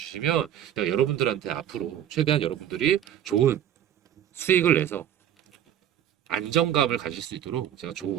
제가 여러분들한테 앞으로 최대한 여러분들이 좋은 수익을 내서 안정감을 가질 수 있도록 제가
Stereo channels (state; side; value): quieter; left; 10.6 dB